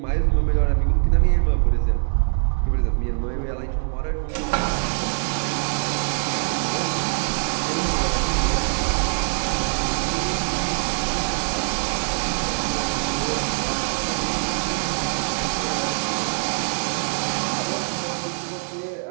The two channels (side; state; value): left; silent; 63 dB below the other